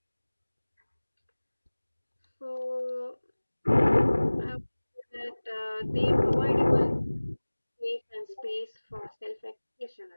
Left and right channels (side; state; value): both; inverted; correlation -1.00